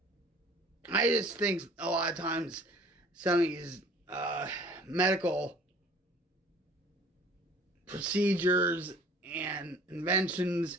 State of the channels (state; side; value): normal; both; correlation 0.50